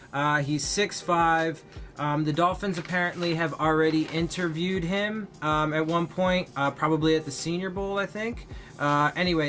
He's 6'5". The Dolphins apparently have already interviewed him at one point, probably at the Senior Bowl, I think.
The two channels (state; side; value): identical; both; correlation 1.00